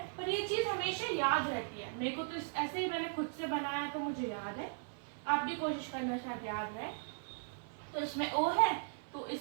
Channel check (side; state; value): left; silent; 53 dB below the other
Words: पर ये चीज हमेशा याद रहती है। मेरे को तो ऐसे ही मैंने खुद से बनाया तो मुझे याद है, आप भी कोशिश करना, शायद याद रहे। तो इसमें ओ है तो